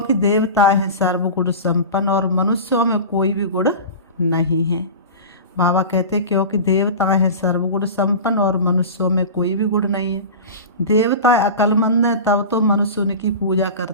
देवता हैं सर्वगुण संपन्न और मनुष्यों में कोई भी गुण नहीं है। बाबा कहते क्योंकि देवता हैं सर्वगुण संपन्न और मनुष्यों में कोई भी गुण नहीं है। देवता अक्लमंद हैं तब तो मनुष्य उनकी पूजा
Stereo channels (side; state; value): both; inverted; correlation -0.30